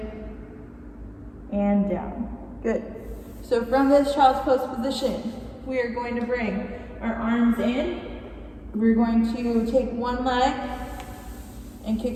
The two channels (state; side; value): identical; both; correlation 1.00